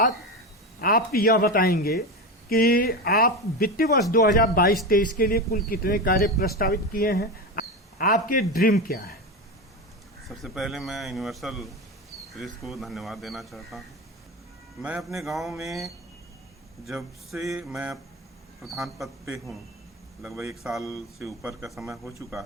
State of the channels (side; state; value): both; normal; correlation 0.20